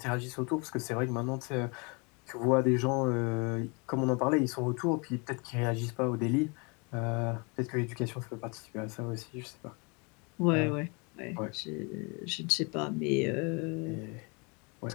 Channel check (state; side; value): quieter; right; 31.5 dB